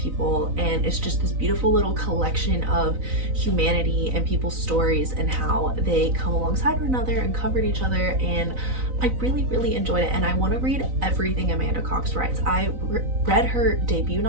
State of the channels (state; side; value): late; left; 3.9 ms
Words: and it's just this beautiful little collection of humanity and people's stories and how they come alongside one another and comfort each other. And I really enjoyed it, and I want to read everything Amanda Cox writes. I read her debut